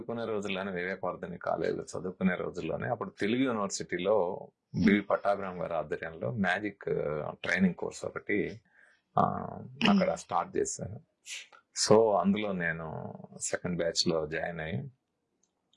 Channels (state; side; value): identical; both; correlation 1.00